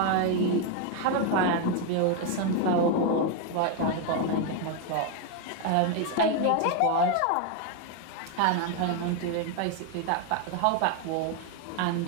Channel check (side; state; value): both; different; correlation 0.01